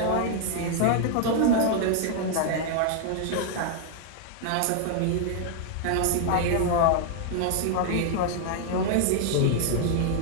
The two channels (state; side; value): different; both; correlation 0.00